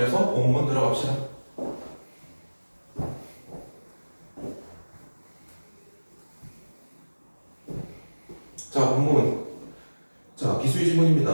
본문 들어갑시다. 자, 본문. 자, 기술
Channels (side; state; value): both; inverted; correlation -1.00